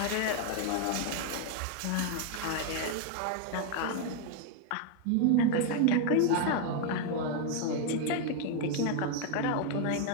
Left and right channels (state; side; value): different; both; correlation 0.00